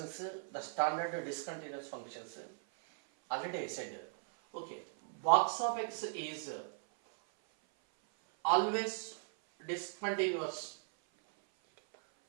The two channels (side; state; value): left; silent; 53 dB below the other